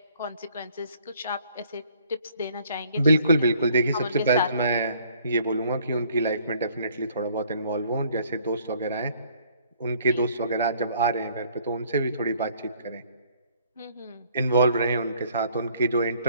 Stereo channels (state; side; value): inverted; both; correlation -0.61